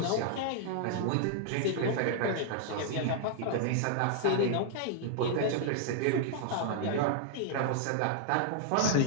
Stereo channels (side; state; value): both; different; correlation -0.01